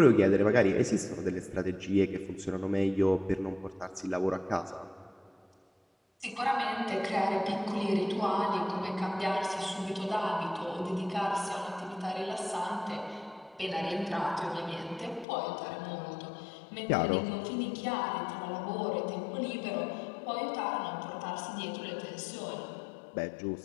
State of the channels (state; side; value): drops out; right; at 15.2 s